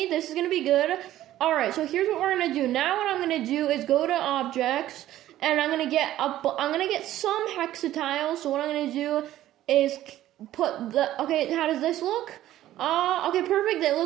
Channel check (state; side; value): quieter; left; 13.7 dB